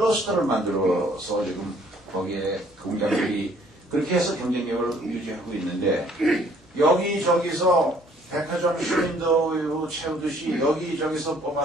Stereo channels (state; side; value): normal; both; correlation 0.60